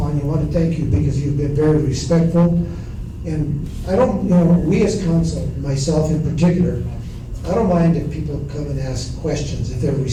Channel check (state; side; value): identical; both; correlation 1.00